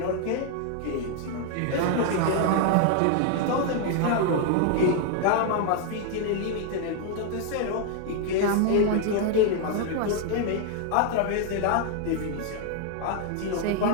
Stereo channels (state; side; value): different; both; correlation 0.00